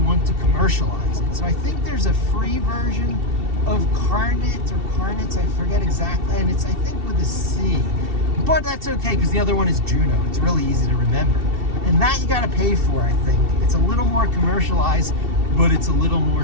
to commercialize it. So I think there's a free version of Carnet or Carnets, I forget exactly, and it's, I think, with a C. But that's okay, because the other one is Juno. It's really easy to remember. And that you gotta pay for, I think. It's a little more commercialized, but it's a little more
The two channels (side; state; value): left; late; 2.7 ms